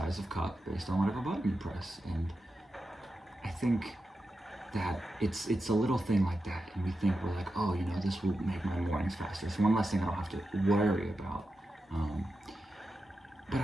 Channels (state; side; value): normal; both; correlation 0.90